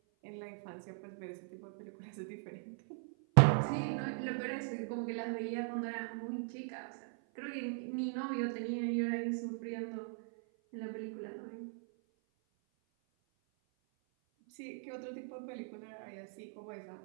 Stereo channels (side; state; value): left; silent; 51 dB below the other